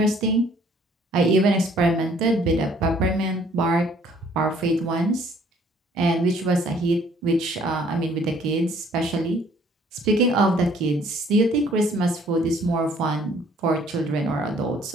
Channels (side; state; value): both; normal; correlation 0.59